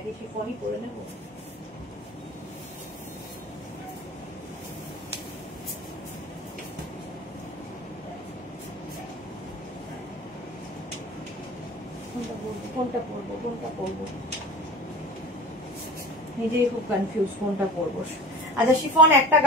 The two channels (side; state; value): both; normal; correlation 0.37